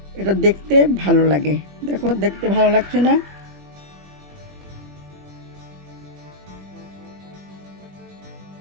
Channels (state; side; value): late; left; 21 ms